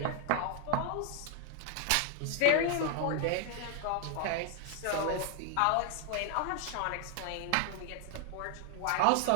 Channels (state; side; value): different; both; correlation 0.01